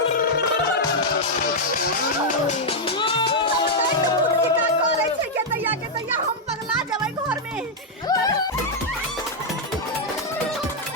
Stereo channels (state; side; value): normal; both; correlation -0.02